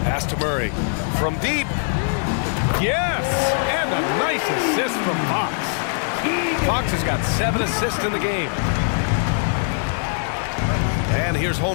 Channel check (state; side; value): silent; right; 60 dB below the other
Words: Pass to Murray. From deep. Yes! And a nice assist from Fox. Fox has got 7 assists in the game. And here's